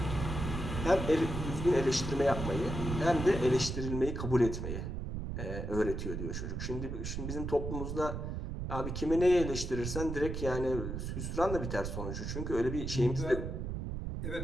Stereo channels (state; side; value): noise; right; rumble, 4 dB below the sound